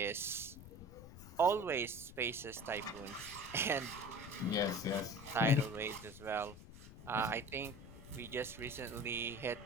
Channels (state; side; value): noise; left; rumble, 15 dB below the sound